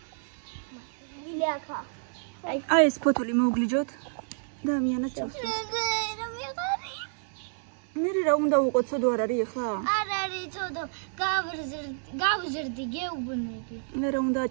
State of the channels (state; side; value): silent; left; 58 dB below the other